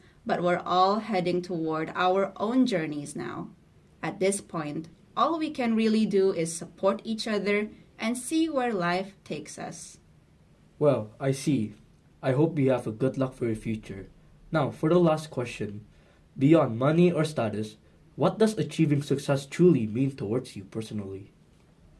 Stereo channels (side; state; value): both; identical; correlation 1.00